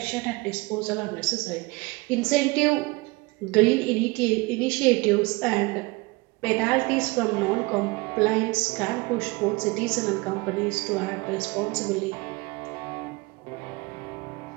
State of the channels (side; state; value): left; quieter; 24.2 dB